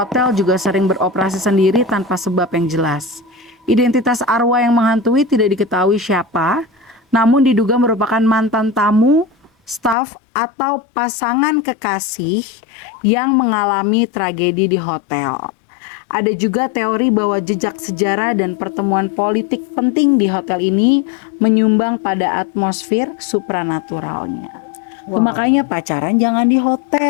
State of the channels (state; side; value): drops out; right; at 10.0 s